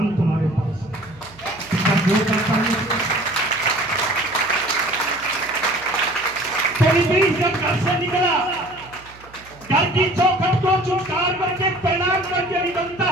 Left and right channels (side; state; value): right; noise; hum, 23 dB below the sound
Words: तुम्हारे पास हैं। जब घर से निकला, घर की चौखट को चुटकार करके प्रणाम करके निकलता